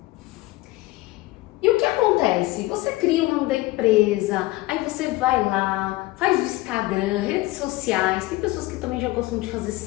E o que acontece? Você cria o nome da empresa, aí você vai lá, faz o Instagram, redes sociais, tem pessoas que também já gostam de fazer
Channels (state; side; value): quieter; right; 19.5 dB